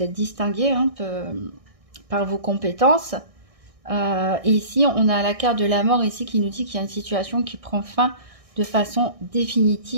êtes distingué, hein, par vos compétences. Et ici, on a la carte de la mort ici qui nous dit qu'il y a une situation qui prend fin de façon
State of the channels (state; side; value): late; left; 1.6 ms